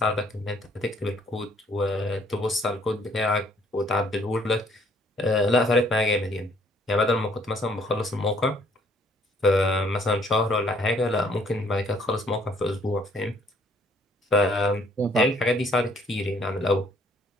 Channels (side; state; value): both; normal; correlation 0.63